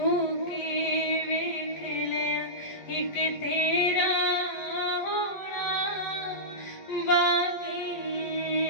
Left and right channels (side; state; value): right; late; 12 ms